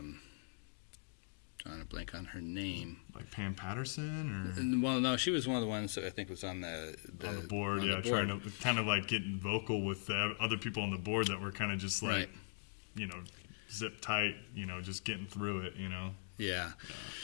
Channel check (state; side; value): silent; right; digital silence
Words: Drawing a blank on her name. Like Pam Patterson, or Well, no, she was one of the ones that I think was on the board. on the board. Trying to kind of like getting vocal with the other people on the board that were kind of just like, Right. zip tight, just getting through it, Yeah.